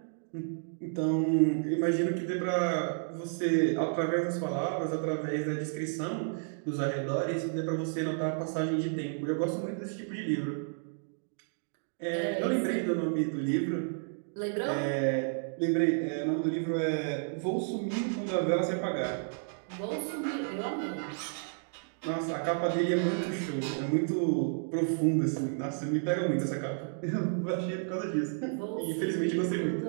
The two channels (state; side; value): silent; left; digital silence